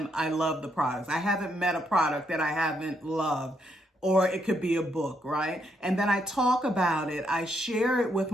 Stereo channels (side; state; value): both; normal; correlation 0.76